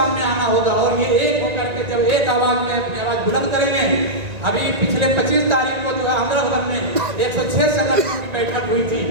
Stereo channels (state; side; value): late; left; 1.9 ms